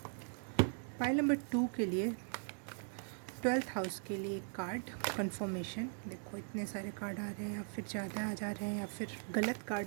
पाइल नंबर 2 के लिए 12th हाउस के लिए एक कार्ड कंफर्मेशन। देखो इतने सारे कार्ड आ रहे हैं, या फिर ज़्यादा आ जा रहे हैं या फिर गलत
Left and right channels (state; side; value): silent; left; 51 dB below the other